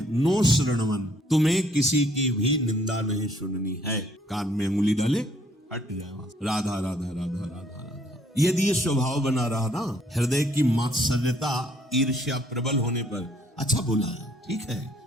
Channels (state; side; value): normal; both; correlation 0.64